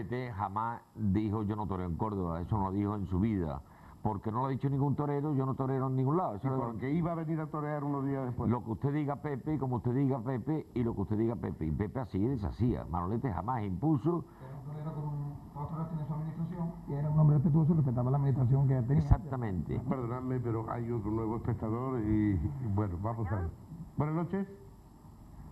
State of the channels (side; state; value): both; identical; correlation 1.00